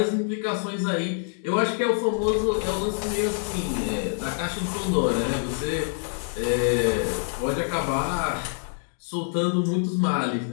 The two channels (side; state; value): right; silent; digital silence